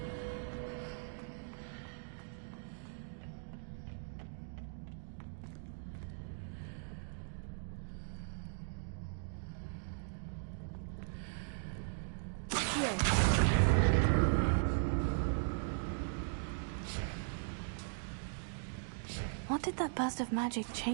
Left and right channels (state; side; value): silent; left; digital silence